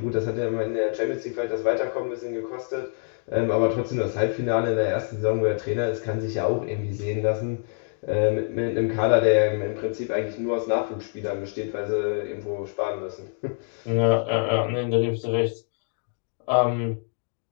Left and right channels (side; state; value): right; silent; 61 dB below the other